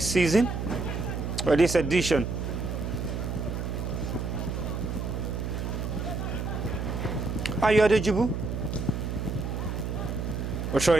season, or this edition. Ayo Adejibu. We're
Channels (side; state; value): right; noise; hum, 3 dB below the sound